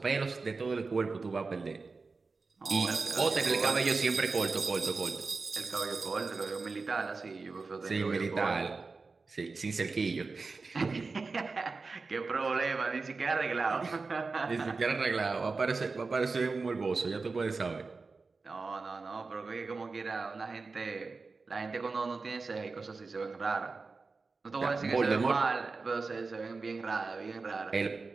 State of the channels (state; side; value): quieter; left; 4.1 dB